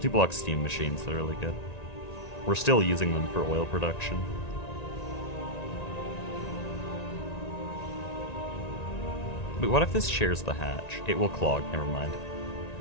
steam machines, they're really good. We're still using them for oil production. Wait, what if this shares the hatch? It will clog, never mind.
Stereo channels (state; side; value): late; right; 1.9 ms